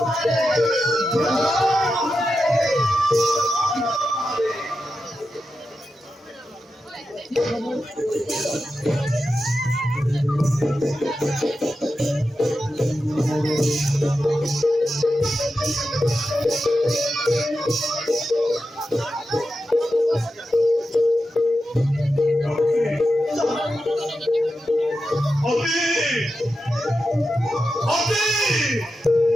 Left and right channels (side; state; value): both; normal; correlation 0.90